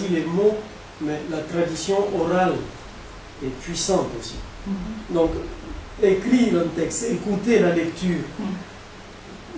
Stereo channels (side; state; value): both; identical; correlation 1.00